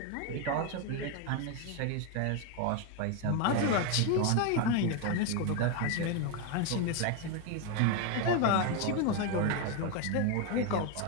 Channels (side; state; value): both; different; correlation 0.02